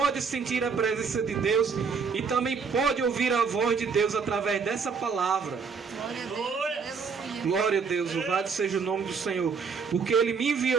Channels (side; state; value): left; quieter; 5.5 dB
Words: sentir a presença de Deus e também pode ouvir a voz de Deus através dessa palavra. Glória a Deus. Aleluia. Glória a Deus, louvado seja o nome do Senhor, porque Ele me